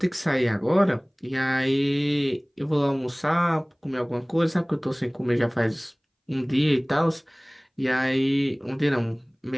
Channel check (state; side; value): identical; both; correlation 1.00